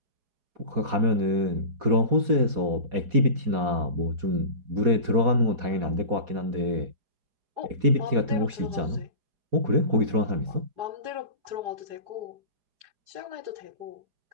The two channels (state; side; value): late; left; 4.2 ms